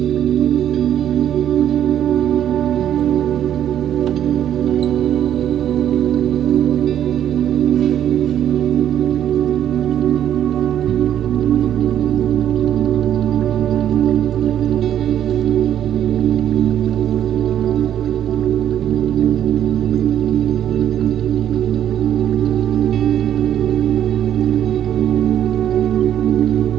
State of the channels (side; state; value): left; quieter; 10.5 dB